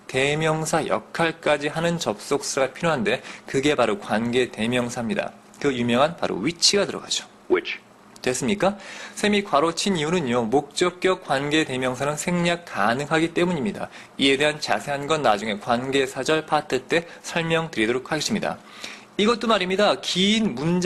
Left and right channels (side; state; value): both; identical; correlation 1.00